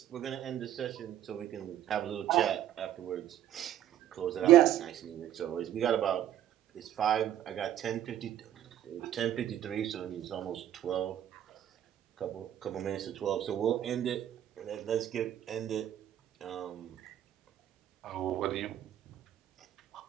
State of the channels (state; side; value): quieter; left; 11.6 dB